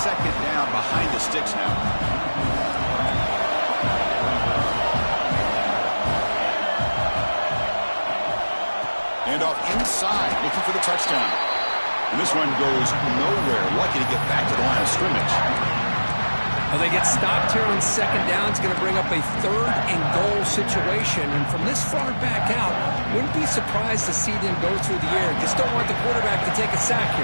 down behind the sticks now. And off inside, looking for the touchdown. And this one goes nowhere. Lucky to get back to the line of scrimmage. Well, they get stopped here on second down. It's going to bring up a third and goal situation. And from this far back out, wouldn't be surprised to see them go through the air. Just don't want the quarterback to take a sack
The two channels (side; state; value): both; inverted; correlation -1.00